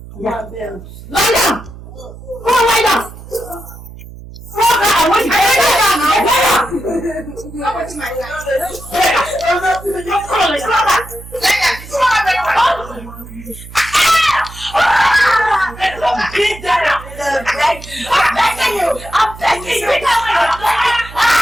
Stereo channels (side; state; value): right; noise; hum, 16 dB below the sound